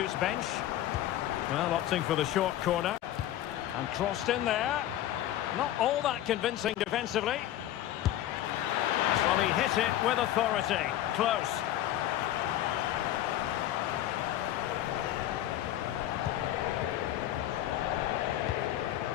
bench. Well, opting for the short corner. And crossed in there. Not all that convincing defensively. Well, he hit it with authority. Close.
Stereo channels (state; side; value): quieter; right; 13.0 dB